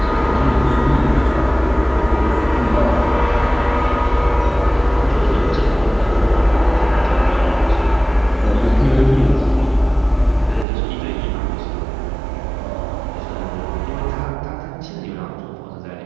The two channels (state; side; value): drops out; left; at 10.7 s